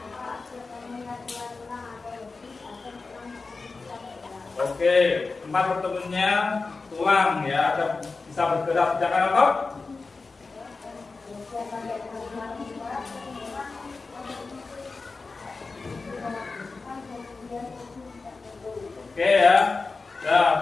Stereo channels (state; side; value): quieter; right; 4.0 dB